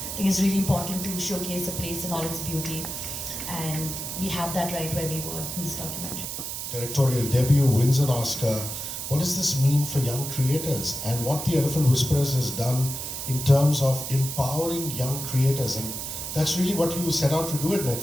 I think it's really important to showcase a place in all its beauty. And we have that right where we were in this documentary. Directorial debut, wins an Oscar. What does this mean for young creators, and what the Elephant Whisperers has done in terms of empowering young creators? And that's really what you set out to do at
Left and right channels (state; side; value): noise; right; hiss, 6 dB below the sound